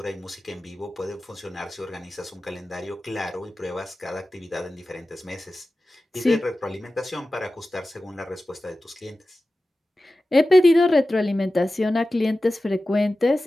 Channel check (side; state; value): both; normal; correlation 0.95